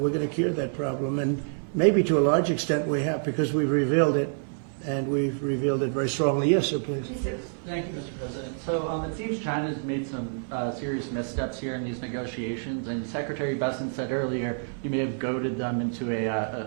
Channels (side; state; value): left; silent; digital silence